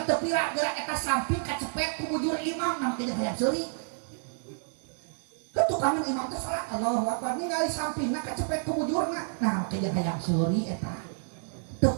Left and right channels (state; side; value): silent; left; digital silence